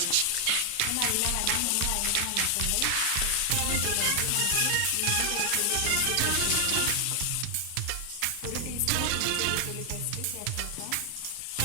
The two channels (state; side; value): different; both; correlation 0.00